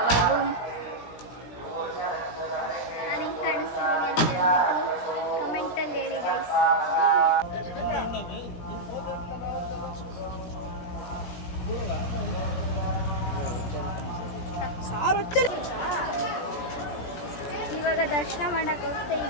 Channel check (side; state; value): right; late; 17 ms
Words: ನಾನು ಹೆಂಗೆ ಕಾಣಿಸ್ತೀನಿ ಅಂತ ಹೇಳ್ಬಿಟ್ಟು ಕಮೆಂಟಲ್ಲಿ ಹೇಳಿ ಗೈಸ್. ಇವಾಗ ದರ್ಶನ ಮಾಡಕ್ಕೆ ಹೋಗ್ತಾ